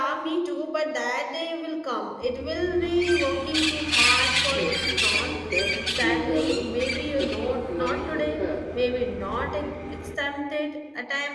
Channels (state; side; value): identical; both; correlation 1.00